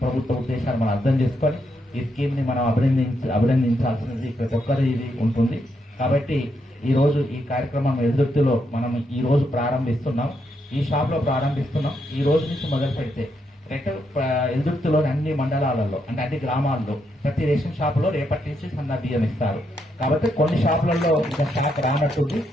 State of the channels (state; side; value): normal; both; correlation 0.79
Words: ప్రభుత్వ ఉద్దేశాలు మనం అర్థం చేసుకొని ఈ స్కీమ్ ని మనం అభినందించాల్సినది ప్రతి ఒక్కరు ఇది ఉంటుంది. కాబట్టి ఈ రోజు ఈ కార్యక్రమం వెల్దుర్తిలో మనం ఈ రోజు ప్రారంభిస్తున్నాం. ఈ షాప్ లో ప్రారంభిస్తున్నాం. ఈ రోజు నుంచి మొదలు పెడితే రైట్ వెల్దుర్తిలోని అన్ని మండలాలలో అంటే అన్ని గ్రామాల్లో ప్రతి రేషన్ షాపులో రేపటి నుంచి సన్న బియ్యం ఇస్తారు. కాబట్టి కొన్ని షాపులలో ఇంకా స్టాక్ రానట్టుంది,